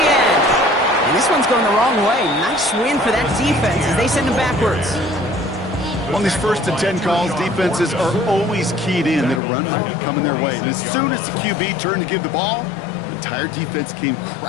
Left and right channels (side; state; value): right; drops out; at 9.4 s